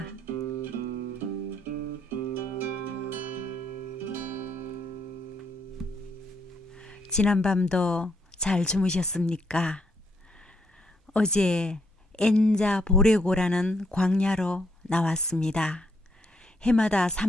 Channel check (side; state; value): both; normal; correlation 0.74